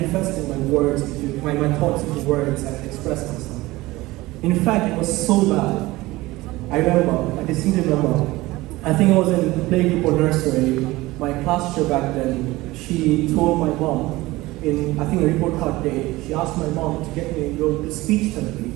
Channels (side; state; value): left; quieter; 19.5 dB